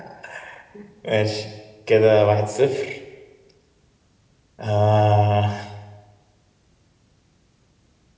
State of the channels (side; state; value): both; identical; correlation 1.00